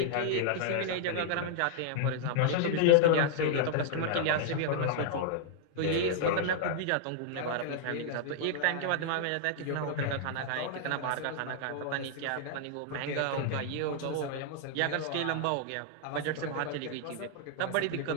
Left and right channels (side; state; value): both; different; correlation -0.01